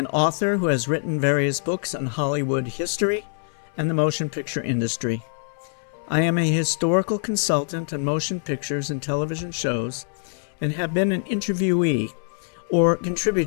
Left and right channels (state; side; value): silent; right; 62 dB below the other